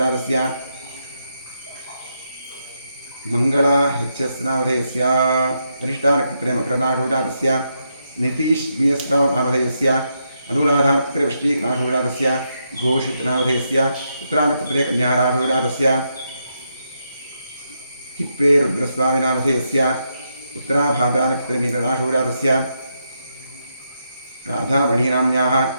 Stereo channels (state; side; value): inverted; both; correlation -0.82